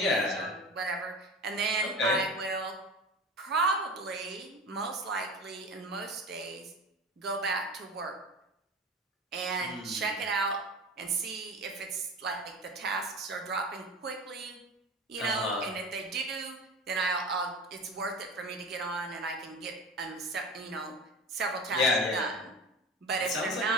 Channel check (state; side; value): normal; both; correlation 0.32